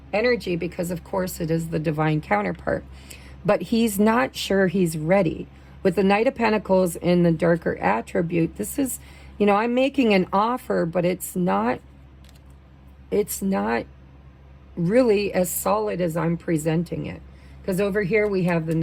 energy, because of course it is the divine counterpart. But he's not sure he's ready. With the Knight of Pentacles in the darker attribute, this is, you know, I'm making an offer, but it's not really as solid as I'm presenting it. Because over here we have the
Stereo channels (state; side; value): identical; both; correlation 1.00